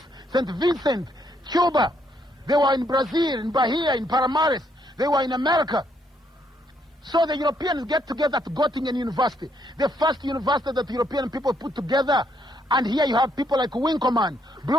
St. Vincent, Cuba. They were in Brazil, in Bahia, in Palmares. They were in America. So the Europeans get together at Göttingen University, the first university that European people put together. And here you have people like Winkelmann,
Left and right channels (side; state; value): both; normal; correlation 0.72